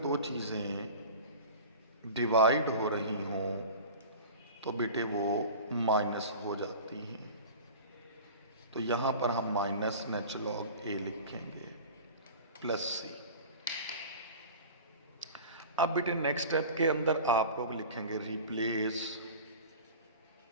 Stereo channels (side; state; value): both; inverted; correlation -0.37